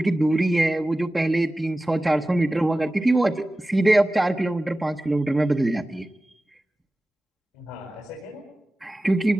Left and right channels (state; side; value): normal; both; correlation 0.96